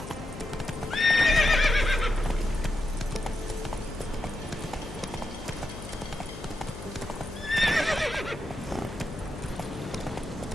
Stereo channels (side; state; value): left; noise; hum, 12 dB below the sound